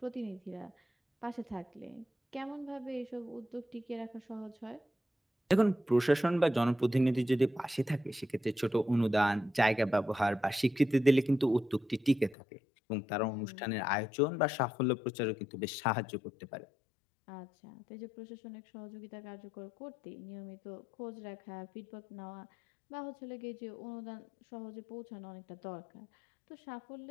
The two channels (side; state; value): right; drops out; at 12.4 s